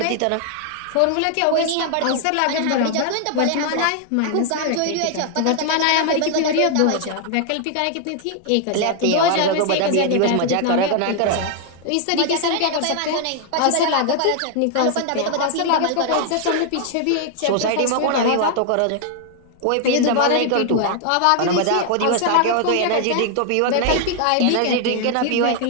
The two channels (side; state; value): both; different; correlation 0.00